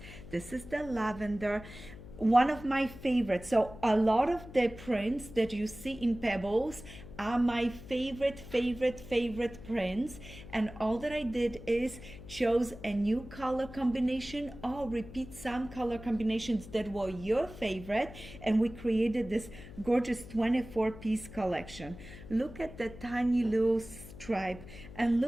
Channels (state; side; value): noise; left; hum, 15 dB below the sound